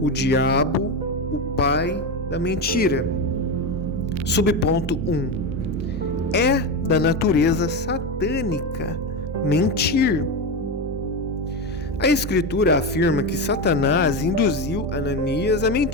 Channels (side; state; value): both; normal; correlation 0.16